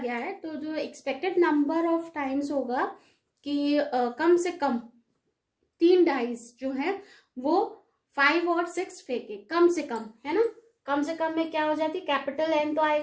है, तो जो एक्सपेक्टेड नंबर ऑफ टाइम्स होगा कि कम से कम 3 डाइज जो है वो 5 और 6 फेंके, कम से कम, है ना. कम से कम में क्या हो जाती है? कैपिटल N तो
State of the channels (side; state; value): both; identical; correlation 1.00